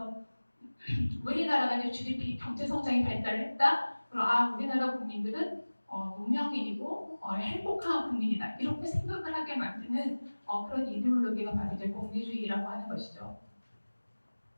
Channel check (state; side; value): inverted; both; correlation -1.00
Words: 우리나라가 이제 GDP 경제 성장이 발달했다. 그럼 우리나라 국민들은 문명인이고 행복한 국민이다. 이렇게 생각을 하게 만드는 그런 이데올로기가 바로 이제 공리주의라고 하는 것이죠.